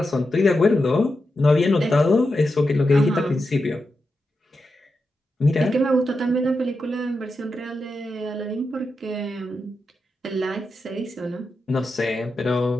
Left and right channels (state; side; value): normal; both; correlation 0.88